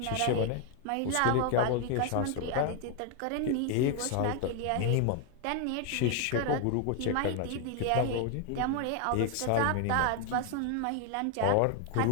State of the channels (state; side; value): different; both; correlation 0.00